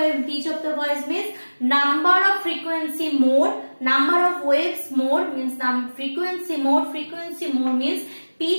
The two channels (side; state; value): both; inverted; correlation -1.00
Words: the voice means number of frequency more, number of waves more means frequency more means